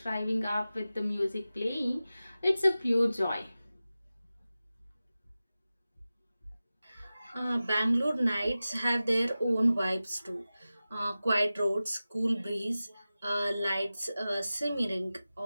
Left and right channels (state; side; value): inverted; both; correlation -0.95